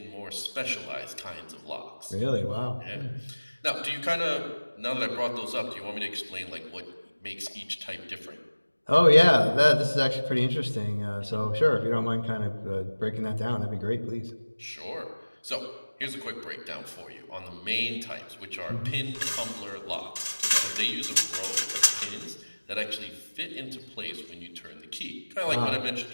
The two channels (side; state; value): both; inverted; correlation -1.00